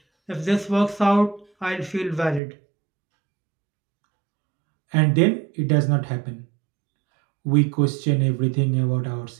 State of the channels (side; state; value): left; drops out; at 2.4 s